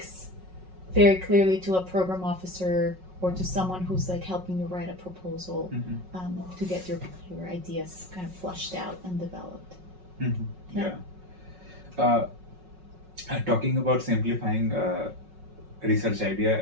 very clearly to a program officer or to someone who's like helping you write a proposal to get your ideas kind of flushed out and developed. Talking about simplifying research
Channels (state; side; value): late; left; 5.4 ms